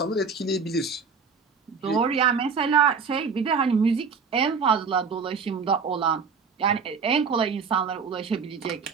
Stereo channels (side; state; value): left; quieter; 5.5 dB